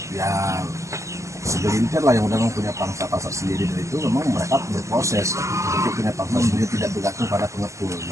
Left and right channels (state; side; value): late; left; 0.15 ms